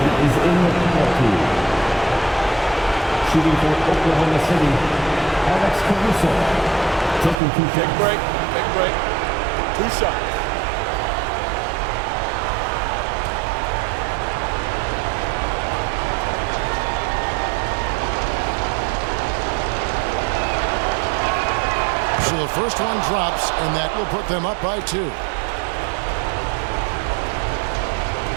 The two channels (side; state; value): left; drops out; at 7.4 s